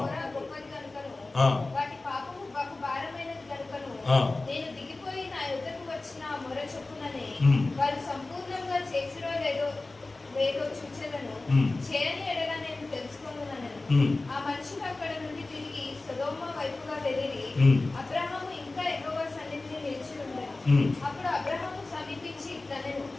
మొర గొప్పది గనుకను, ఆ. వాటి పాపము బహు భారమైనది గనుకను, ఆ. నేను దిగిపోయి నా యొద్దకు వచ్చిన ఆ మొర చొప్పుననే ఉమ్. వారు సంపూర్ణంగా చేసిరో లేదో చూచెదను. ఉమ్. చేయని ఎడల నేను తెలుసుకొనుననెను. ఉమ్. ఆ మనుషులు అక్కడ నుండి తిరిగి సొదొమ వైపుగా వెళ్ళిరి. ఉమ్. అబ్రహాము ఇంకా యెహోవా సన్నిధిని నిలిచి ఉండెను. ఉమ్. అప్పుడు అబ్రహాము సమీపించి ఇట్లనెను,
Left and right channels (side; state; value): right; quieter; 3.2 dB